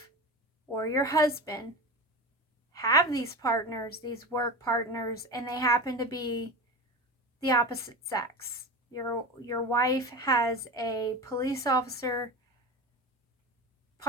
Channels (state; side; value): normal; both; correlation 0.26